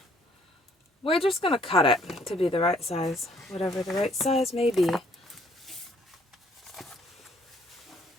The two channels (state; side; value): normal; both; correlation 0.63